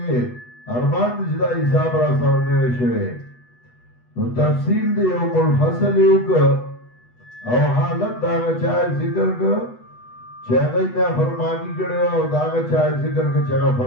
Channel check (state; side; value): late; right; 8.1 ms